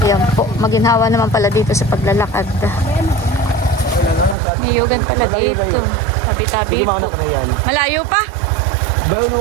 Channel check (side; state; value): left; drops out; at 4.4 s